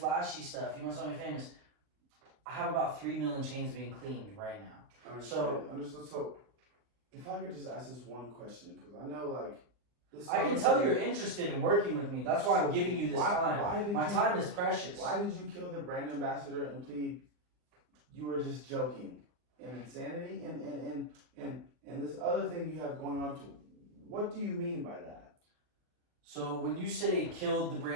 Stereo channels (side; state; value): left; late; 39 ms